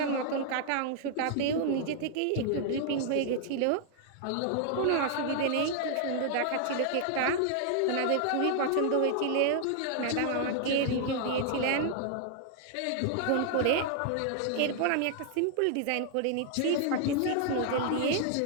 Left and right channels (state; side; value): different; both; correlation 0.00